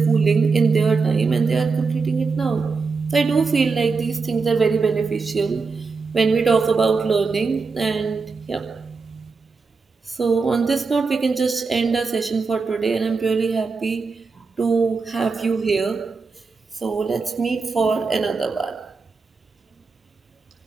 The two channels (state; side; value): quieter; left; 4.6 dB